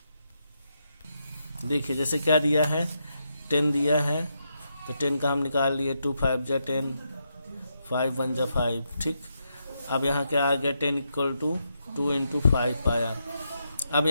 देखिए जैसे क्या दिया है 10 दिया है तो 10 का हम निकाल लिए। 2 5 जा 10, 5 1 जा 5। ठीक, अब यहाँ क्या आ गया 10 इक्वल टू 2 इंटू 5 आया। अब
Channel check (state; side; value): inverted; both; correlation -0.82